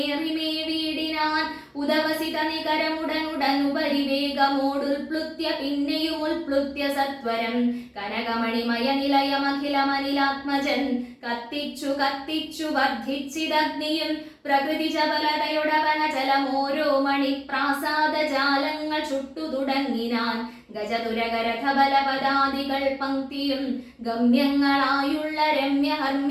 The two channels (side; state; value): both; identical; correlation 1.00